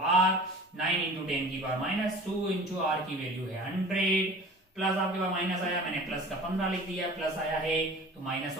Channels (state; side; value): normal; both; correlation 0.42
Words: 9 × 10⁻² into R की वैल्यू है 100, प्लस आपके पास माइनस आया, मैंने प्लस का 15 लिख दिया, प्लस आया है तो माइनस